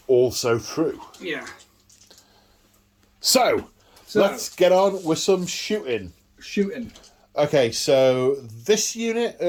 also true. Yeah. So let's get on with some shooting. Okay, so this unit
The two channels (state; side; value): identical; both; correlation 1.00